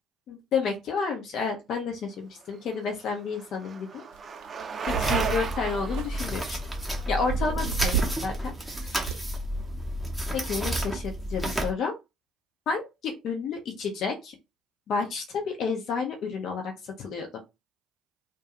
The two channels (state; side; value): normal; both; correlation 0.63